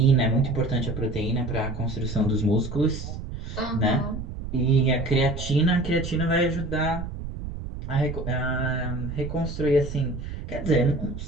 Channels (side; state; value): right; noise; rumble, 8 dB below the sound